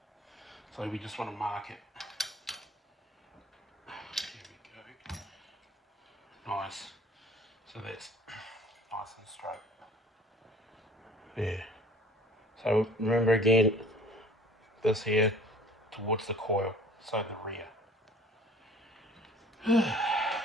So we just want to mark it. Here we go. Nice. So that's nice and straight. There. So remember again, this here towards the coil, so the rear.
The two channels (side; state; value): both; normal; correlation 0.51